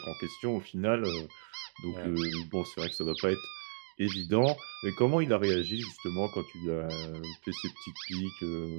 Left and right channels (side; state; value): left; silent; digital silence